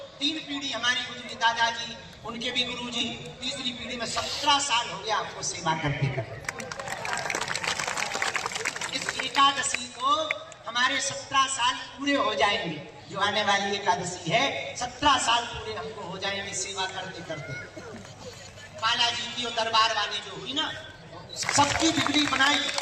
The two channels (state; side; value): identical; both; correlation 1.00